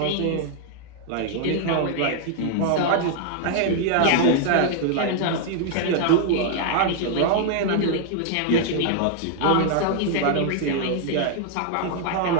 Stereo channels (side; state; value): both; different; correlation -0.01